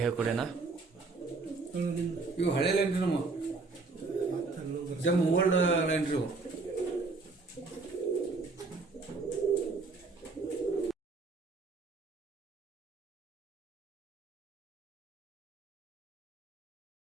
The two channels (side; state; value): left; quieter; 3.9 dB